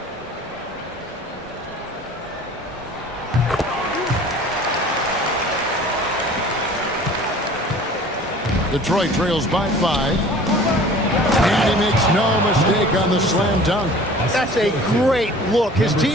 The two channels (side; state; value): both; normal; correlation 0.46